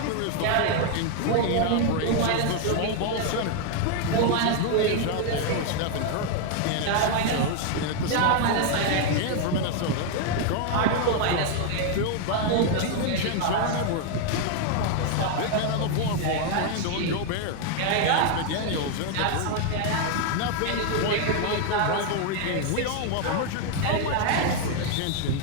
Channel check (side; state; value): both; different; correlation 0.00